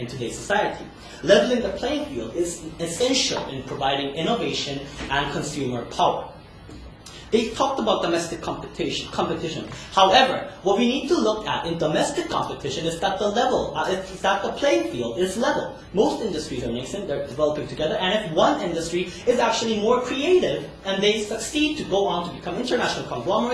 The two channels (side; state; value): both; identical; correlation 1.00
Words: today's society? Leveling the playing field is essential in providing innovation and consumer power. They talked about domestic competition. However, what we need to look at in domestic competition is that the playing field is level. Most industries are nascent, they're developing together, and if one industry is actually more creative and they succeed to go on to become international